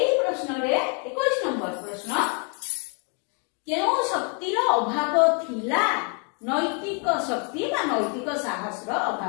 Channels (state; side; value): quieter; right; 38.3 dB